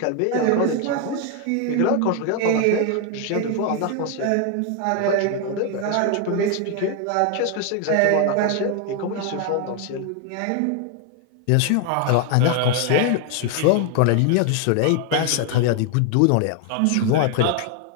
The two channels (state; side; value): different; both; correlation 0.01